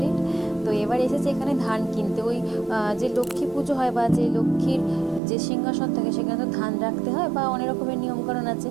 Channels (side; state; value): left; drops out; at 5.2 s